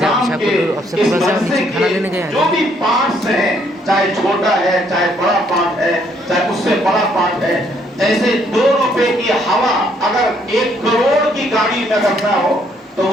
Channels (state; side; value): normal; both; correlation 0.68